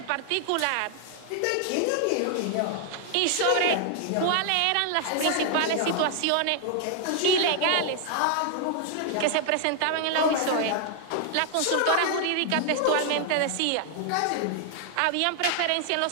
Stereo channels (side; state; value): both; different; correlation 0.00